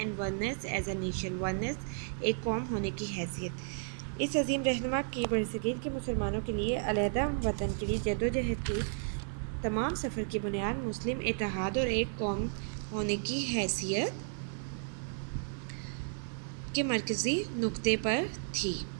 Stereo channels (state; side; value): silent; left; digital silence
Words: oneness as a nation, oneness एक कौम होने की हैसियत। इस अजीम रहनुमा की बरसगीर के मुसलमानों के लिए अलहदा वतन के लिए जदोजहद की तमाम सफ़र की बुनियाद मुस्लिम इत्तेहाद और एक कौम होने की हैसियत के मरकज़ी नुक्ते पर थी।